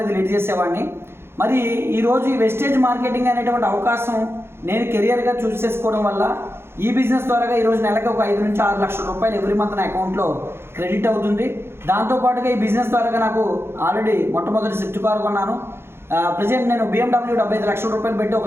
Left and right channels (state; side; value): late; left; 0.12 ms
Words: లీడ్ చేసేవాడిని. మరి ఈరోజు ఈ వెస్టేజ్ మార్కెటింగ్ అనేటువంటి అవకాశం నేను కెరియర్గా చూస్ చేసుకోవడం వల్ల ఈ బిజినెస్ ద్వారా ఈరోజు నెలకు ఒక 5 నుంచి 6 లక్షల రూపాయలు ఎవ్రీ మంత్ నా అకౌంట్లో క్రెడిట్ అవుతుంది. దాంతోపాటుగా ఈ బిజినెస్ ద్వారా నాకు ఆల్రెడీ మొట్టమొదటి స్విఫ్ట్ కార్ కొన్నాను. ప్రజెంట్ నేను BMW 75 లక్షల రూపాయలు పెట్టి